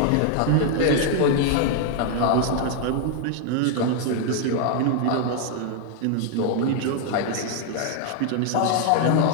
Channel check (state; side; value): different; both; correlation 0.00